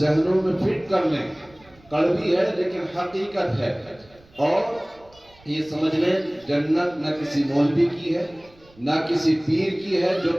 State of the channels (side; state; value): right; noise; rumble, 28 dB below the sound